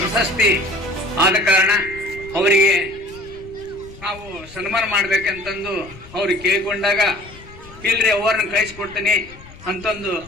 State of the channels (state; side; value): noise; left; rumble, 19 dB below the sound